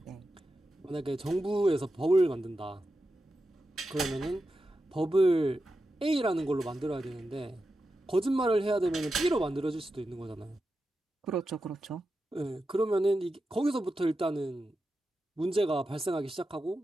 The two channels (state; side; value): normal; both; correlation 0.90